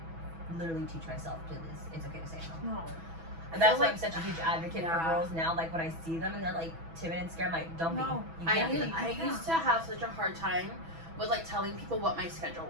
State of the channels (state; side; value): late; left; 6.1 ms